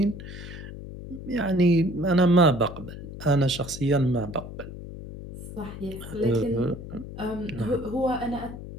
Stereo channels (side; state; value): left; noise; hum, 11 dB below the sound